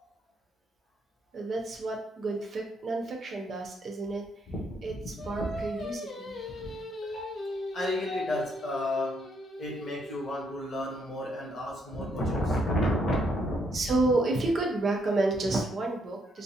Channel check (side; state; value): both; normal; correlation 0.73